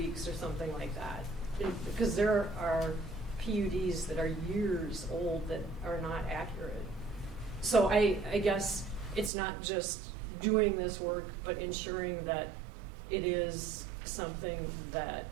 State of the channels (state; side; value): drops out; left; at 9.3 s